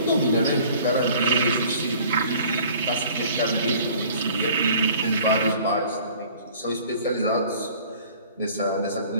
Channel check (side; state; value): both; inverted; correlation -0.49